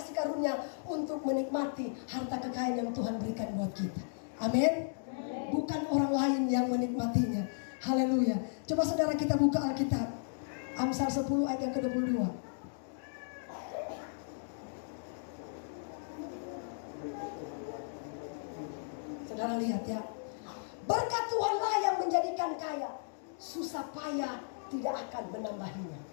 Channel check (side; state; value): right; silent; digital silence